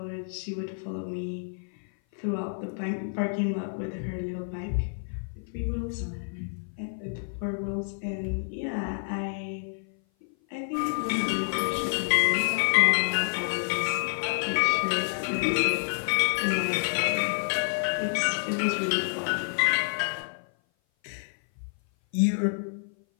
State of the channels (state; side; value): silent; right; 56 dB below the other